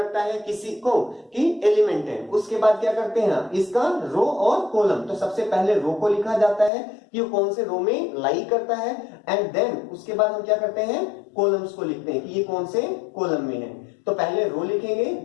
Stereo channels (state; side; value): drops out; right; at 6.7 s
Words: है किसी को कि एलिमेंट है। उसके बाद क्या करते हैं, इसका रो और कॉलम, तो सबसे पहले रो को लिखा जाता है कि वो कौन से रो में लाई करता है, एंड देन उसके बाद हम क्या करते हैं, कॉलम्स को लिखते हैं कि ये कौन से कॉलम में है। तो पहले रो लिखेंगे